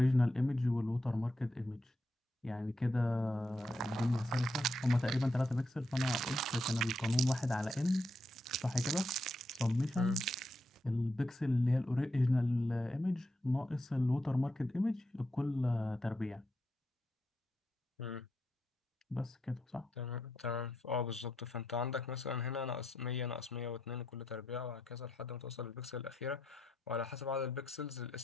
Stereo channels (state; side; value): normal; both; correlation 0.82